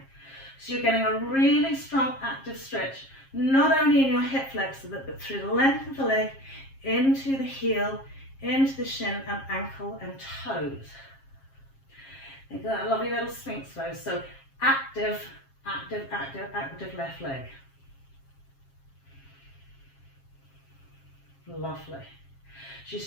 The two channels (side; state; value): right; late; 7.4 ms